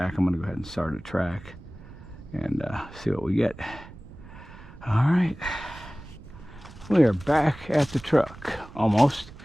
I'm gonna go ahead and start a track and see what we get. All right, we are back at the truck, almost.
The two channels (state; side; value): noise; right; rumble, 17 dB below the sound